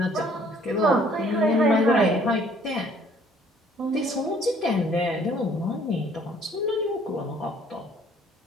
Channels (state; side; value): normal; both; correlation 0.59